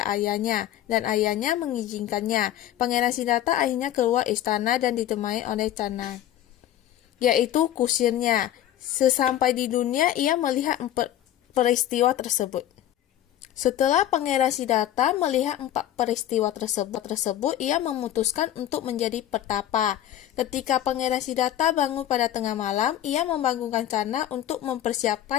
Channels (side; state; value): right; quieter; 12.1 dB